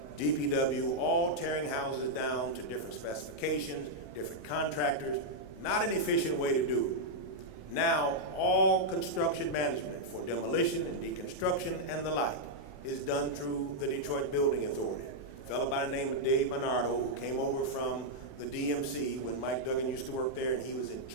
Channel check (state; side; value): late; right; 27 ms